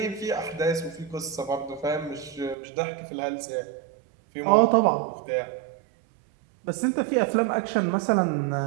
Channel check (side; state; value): left; drops out; at 2.6 s